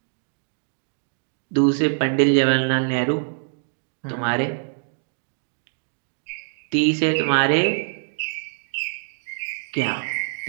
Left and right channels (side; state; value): left; silent; digital silence